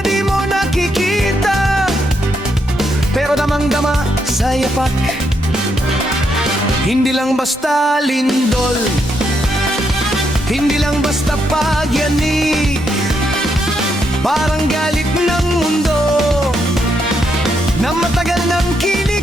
mo nakikita, pero damang-dama sa yapak. Hindi lang basta lindol, hindi lang basta pagyanig, parang galit ng mundo na matagal nang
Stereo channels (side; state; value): both; normal; correlation 0.78